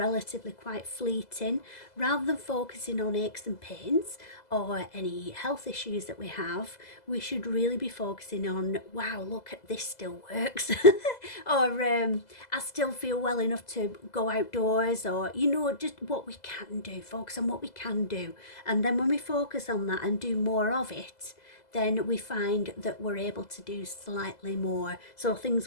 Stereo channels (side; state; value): right; late; 2.0 ms